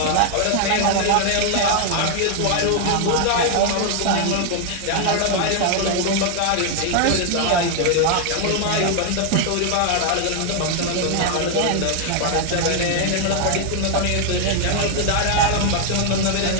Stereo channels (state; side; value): different; both; correlation 0.00